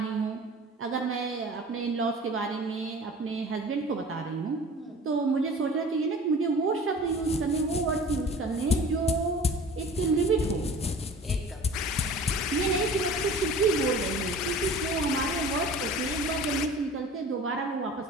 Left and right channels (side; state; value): both; normal; correlation 0.42